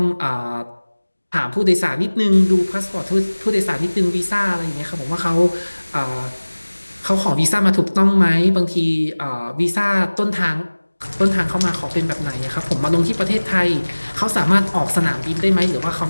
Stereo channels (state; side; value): inverted; both; correlation -1.00